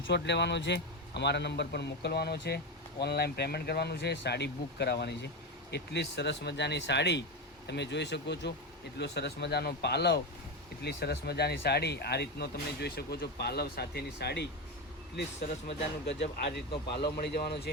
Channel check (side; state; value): both; normal; correlation 0.15